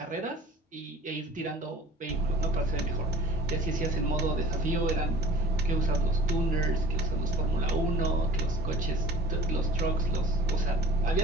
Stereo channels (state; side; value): normal; both; correlation 0.46